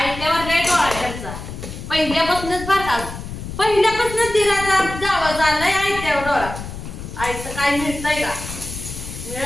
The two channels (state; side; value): noise; left; rumble, 10 dB below the sound